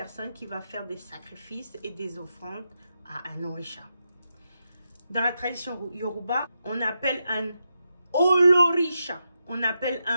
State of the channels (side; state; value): both; inverted; correlation -0.86